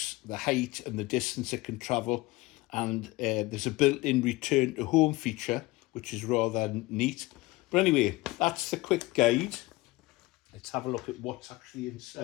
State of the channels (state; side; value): quieter; right; 20.8 dB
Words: the height and the distance it can travel. And there's a built-in return to home feature, which is rather neat. But anyway, that's the quick guide. Let's have a look at what's actually